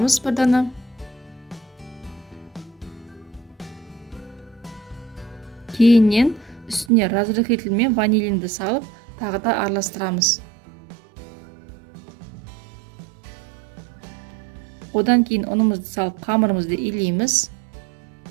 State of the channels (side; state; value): left; drops out; at 6.9 s